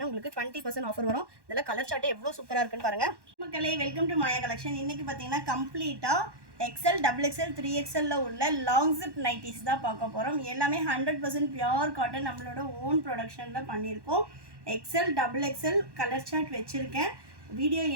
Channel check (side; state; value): left; late; 1.1 ms